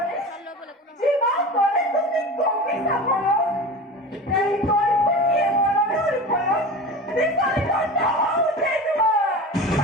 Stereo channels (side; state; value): both; normal; correlation 0.32